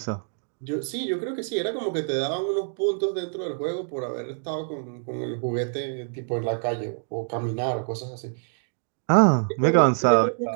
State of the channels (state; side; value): silent; left; digital silence